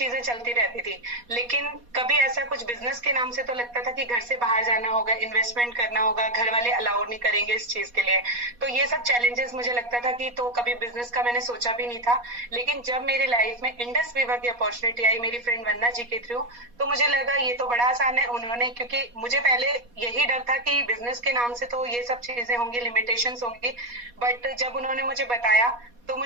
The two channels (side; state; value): left; late; 4.2 ms